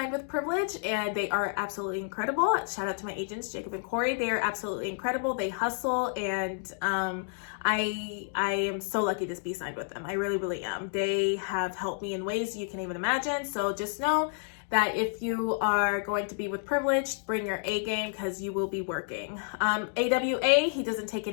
with Privilege, and they are absolutely incredible. Shout out to my agents, Jacob and Corey. They are absolutely incredible. They hustle, and I am so lucky to be signed with them. I really, really am. They have helped me in ways you can even imagine. So just know that if you are going to be with Privilege, bring your A game, because you will be working. AWA, he doesn't take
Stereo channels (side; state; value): right; silent; digital silence